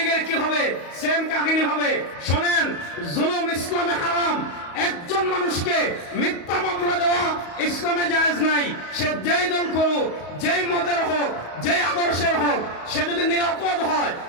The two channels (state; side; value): late; right; 34 ms